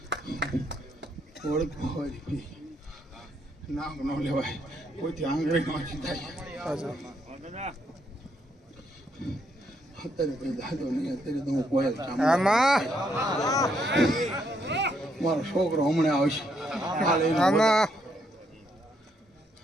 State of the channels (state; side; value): normal; both; correlation 0.74